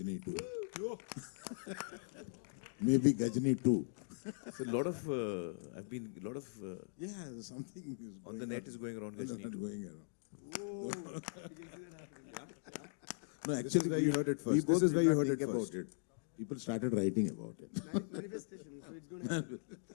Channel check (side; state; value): right; silent; digital silence